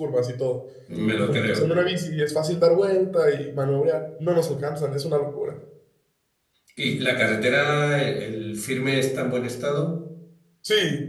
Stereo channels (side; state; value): both; identical; correlation 1.00